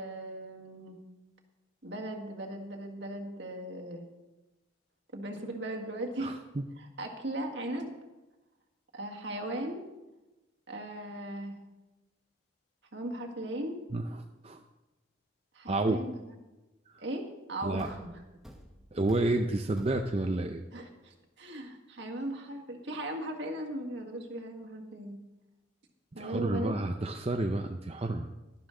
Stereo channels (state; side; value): normal; both; correlation 0.58